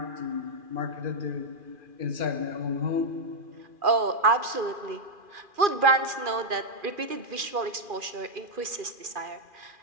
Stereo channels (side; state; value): left; late; 2.4 ms